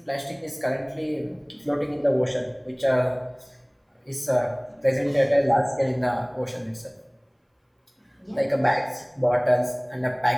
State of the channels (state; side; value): identical; both; correlation 1.00